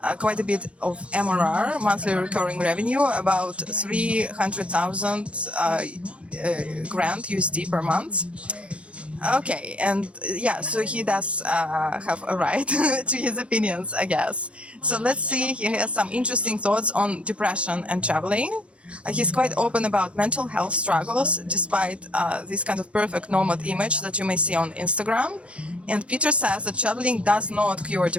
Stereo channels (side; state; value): left; late; 0.061 ms